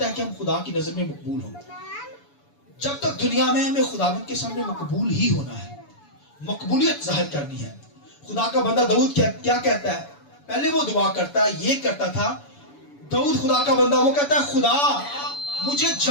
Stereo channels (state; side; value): late; right; 7.0 ms